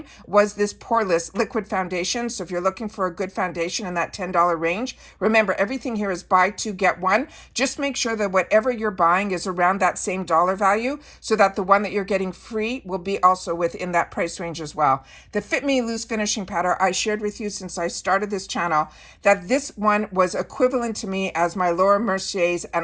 was this poreless liquid foundation. So if you're looking for a good foundation in that $10 range, remember everything here is buy two, get one. Just make sure that whatever you're buying is around that same dollar value so that the one that you're getting free will be also within that price range as well. The Fit Me Loose Finishing Powder, I shared with you since I started this channel that this one was equivalent to me as my Laura Mercier's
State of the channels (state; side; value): identical; both; correlation 1.00